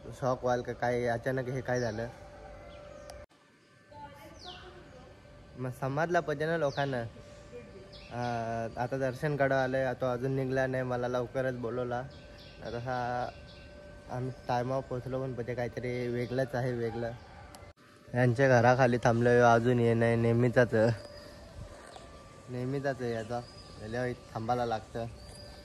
शॉक व्हाल का काय अचानक हे काय झालं। मग समजला पाहिजे ना लोकांना। आता दर्शन कडं आलं, तो अजून निघला नाही, मला लवकरच बोलवला। तसा आम्ही टायमावर पोचलो, पण पाहिजे काहीतरी वेगळंच आहे वेगळं। यांच्या घराखाली थांबलो, अजून ये नाही, नेहमीचाच आहे याचा, थांबायला लागतं।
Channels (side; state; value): both; identical; correlation 1.00